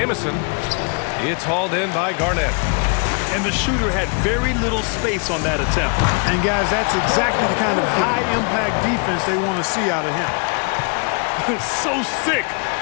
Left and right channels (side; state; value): right; quieter; 36.6 dB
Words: It's hauled in by Garnett. And the shooter had very little space on that attempt. And, guys, that's exactly the kind of high-impact defense they want to see out of him. So sick,